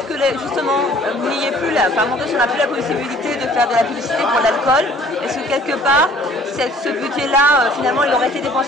que justement vous n'ayez plus on n'a plus la possibilité de faire de la publicité pour l'alcool, est-ce que quelque part ce budget-là finalement il aurait été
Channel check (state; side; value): normal; both; correlation 0.54